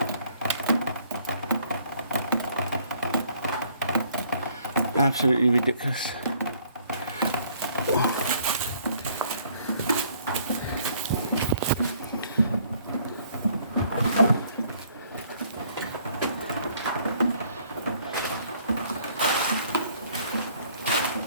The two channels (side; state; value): both; inverted; correlation -0.62